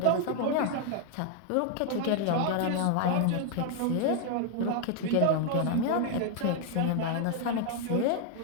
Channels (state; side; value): different; both; correlation 0.00